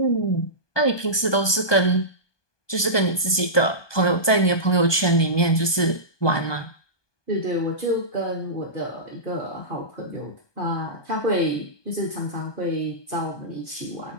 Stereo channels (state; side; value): late; right; 1.2 ms